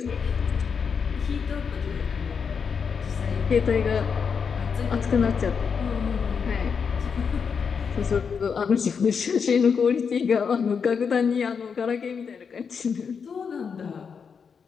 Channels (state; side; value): quieter; right; 6.2 dB